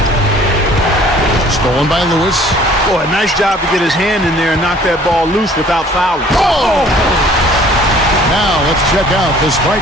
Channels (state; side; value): normal; both; correlation 0.54